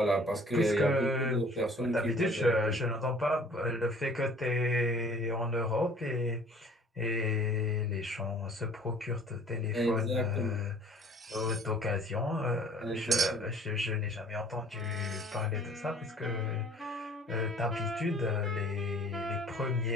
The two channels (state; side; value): normal; both; correlation 0.52